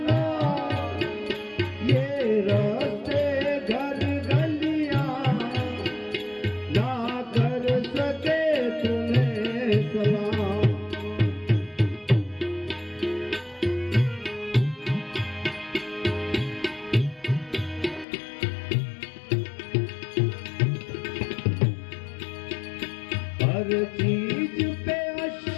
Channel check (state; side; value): drops out; right; at 18.1 s